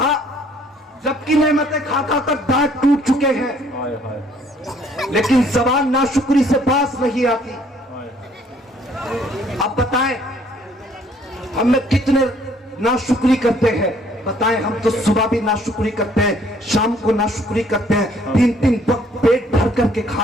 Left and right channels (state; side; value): normal; both; correlation 0.61